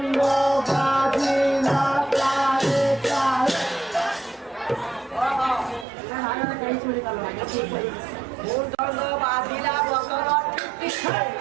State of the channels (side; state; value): left; drops out; at 5.9 s